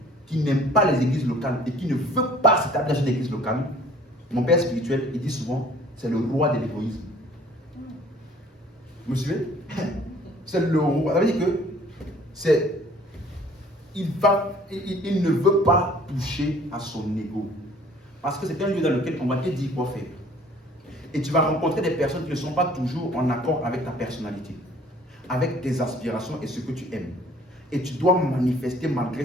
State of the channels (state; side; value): normal; both; correlation 0.54